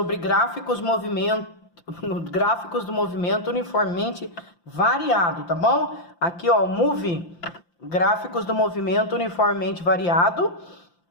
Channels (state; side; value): late; right; 5.8 ms